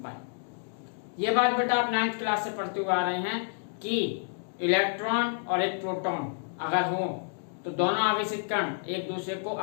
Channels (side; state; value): right; silent; digital silence